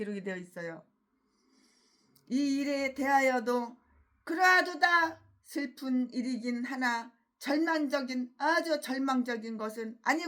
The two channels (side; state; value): both; identical; correlation 1.00